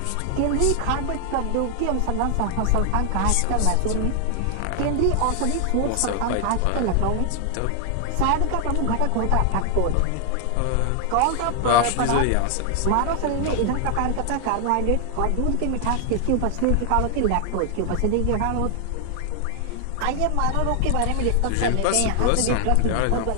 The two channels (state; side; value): different; both; correlation 0.00